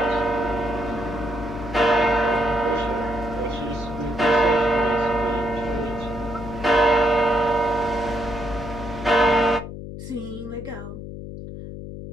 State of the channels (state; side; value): noise; left; hum, 10 dB below the sound